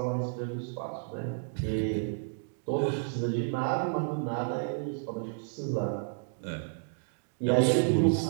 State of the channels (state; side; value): silent; left; digital silence